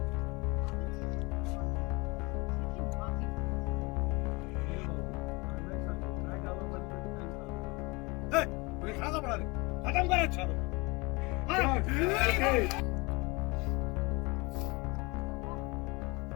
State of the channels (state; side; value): quieter; right; 26.0 dB